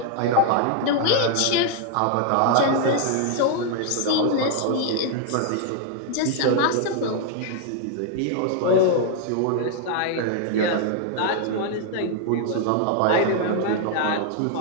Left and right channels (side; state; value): both; different; correlation 0.00